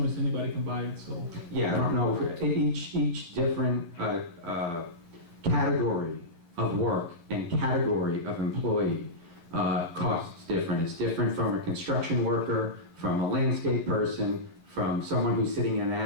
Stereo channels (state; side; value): late; left; 12 ms